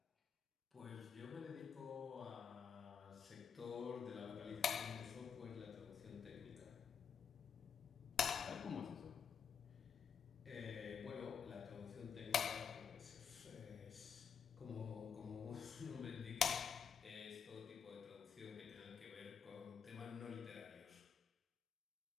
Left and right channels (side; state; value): right; quieter; 7.0 dB